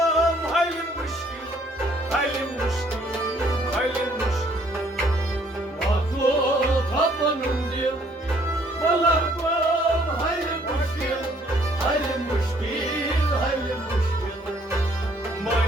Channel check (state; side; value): normal; both; correlation 0.63